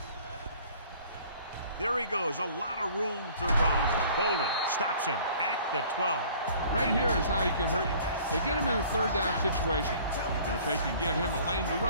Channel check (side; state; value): both; inverted; correlation -0.52